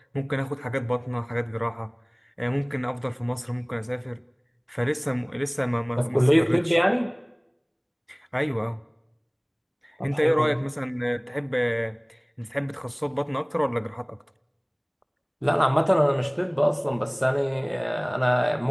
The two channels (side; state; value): both; identical; correlation 1.00